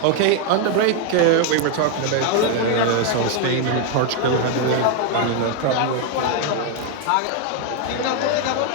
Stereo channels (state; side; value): different; both; correlation 0.01